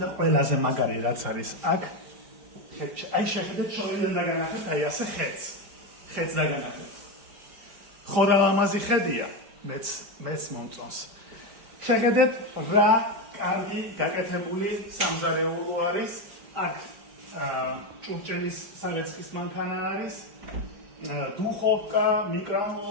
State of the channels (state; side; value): late; left; 5.0 ms